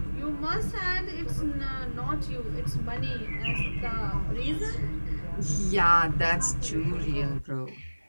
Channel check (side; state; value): both; inverted; correlation -1.00